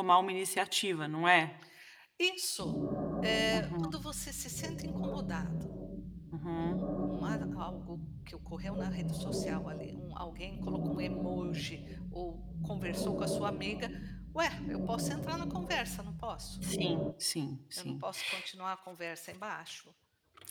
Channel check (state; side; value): identical; both; correlation 1.00